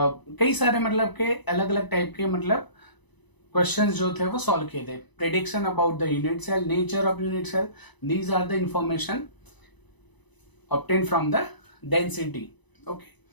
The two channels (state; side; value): late; right; 1.0 ms